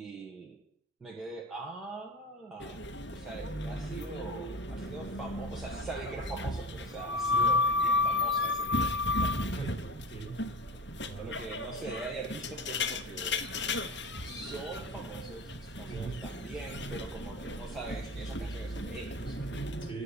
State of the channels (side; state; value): both; normal; correlation 0.31